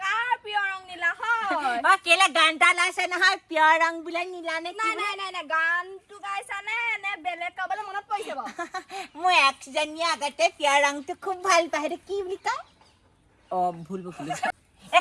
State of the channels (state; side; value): identical; both; correlation 1.00